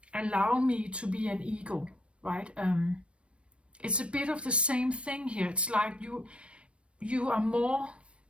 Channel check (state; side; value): late; left; 0.060 ms